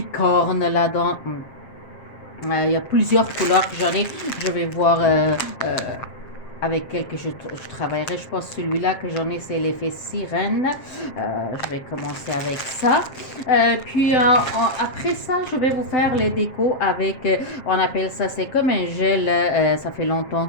là-dedans. Il y a plusieurs couleurs que j'en ai. Je vais voir avec quel que je travaillerai. Je pense que celui-là que j'en ai, c'est l'effet sirène. Je vais commencer avec ça. Après ça, je vais vous faire les décos avec, on appelle ça, c'est comme un gel. Ça fait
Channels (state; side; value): late; right; 7.5 ms